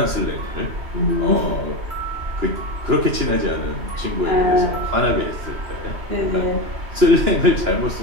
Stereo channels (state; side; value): late; left; 2.9 ms